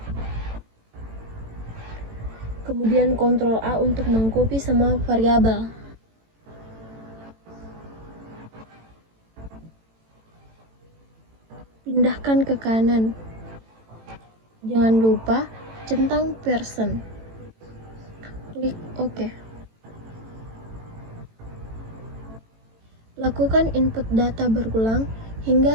Kemudian Ctrl A untuk mengcopy semua variabel. Pindahkan ke kanan. Jangan lupa centang person. Klik OK. Lakukan input data berulang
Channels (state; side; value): late; left; 18 ms